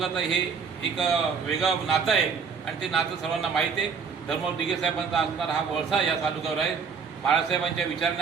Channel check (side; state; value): left; quieter; 5.8 dB